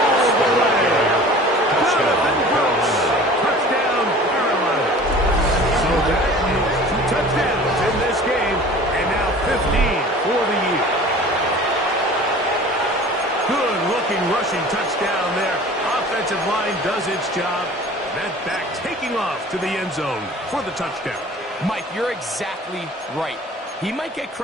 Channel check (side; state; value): both; normal; correlation 0.43